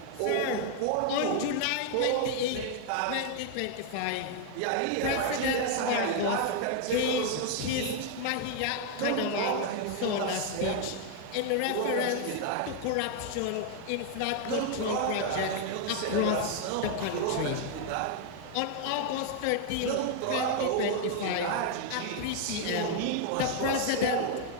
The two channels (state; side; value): different; both; correlation 0.00